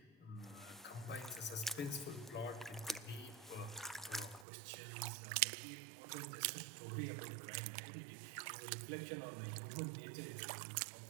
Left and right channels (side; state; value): left; drops out; at 4.5 s